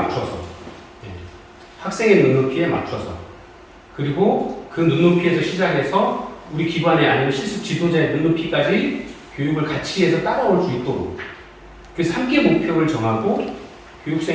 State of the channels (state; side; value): identical; both; correlation 1.00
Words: 학생의 눈높이에 맞춰서, 그리고 그 눈높이에서 시작해서 우리 기관에 아니면 실습 지도자의 눈높이까지 교육을 같이 해서 따라올 수 있도록 그래서 함께 목표를 정하고